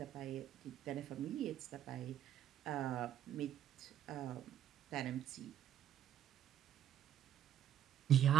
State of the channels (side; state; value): left; quieter; 10.8 dB